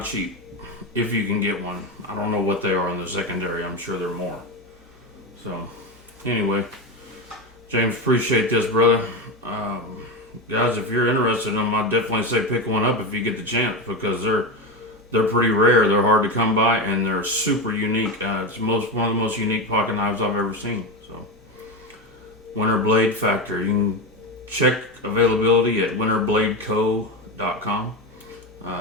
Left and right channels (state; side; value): normal; both; correlation 0.17